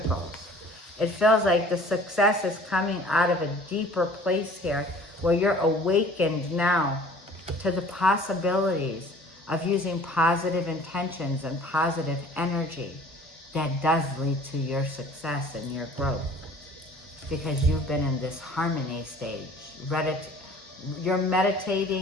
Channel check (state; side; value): normal; both; correlation 0.49